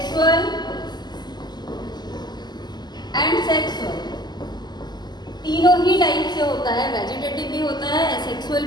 एंड सेक्सुअल, तीनों ही टाइप से होता है। वेजिटेटिव भी होता है, एसेक्सुअल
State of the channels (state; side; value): late; right; 0.21 ms